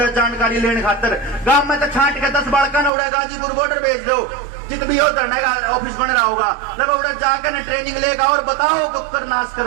जानकारी लेने खातर। गांव में तो छांट के 10 बालका ने उड़े गाजीपुर बॉर्डर भेज दो, जित भी हो धरने का ऑफिस बन रहा होगा, लगभग उधर जाकर ना ट्रेनिंग लेगा और बताओ कुकर नाश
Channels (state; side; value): drops out; left; at 2.9 s